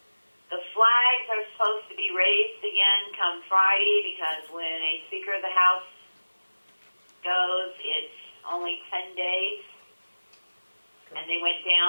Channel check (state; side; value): inverted; both; correlation -1.00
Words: The flags are supposed to be raised again come Friday because when a Speaker of the House goes, it's only 10 days. And they went